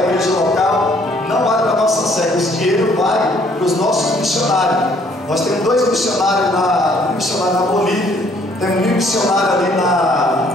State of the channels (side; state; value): both; normal; correlation 0.62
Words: igreja local, não vai para a nossa sede, esse dinheiro vai para os nossos missionários. Nós temos 2 missionários na Bolívia, temos um missionário ali